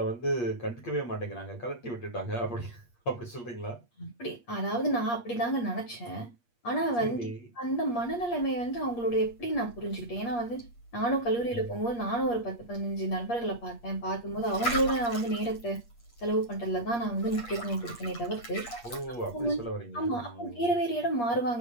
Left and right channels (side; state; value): right; late; 8.5 ms